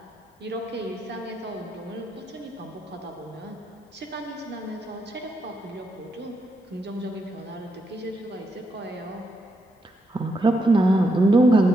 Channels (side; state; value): both; normal; correlation 0.81